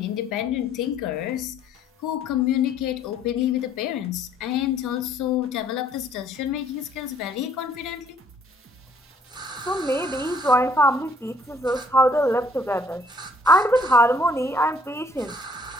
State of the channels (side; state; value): both; normal; correlation 0.62